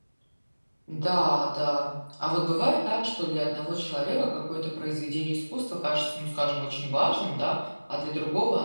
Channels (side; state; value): both; inverted; correlation -1.00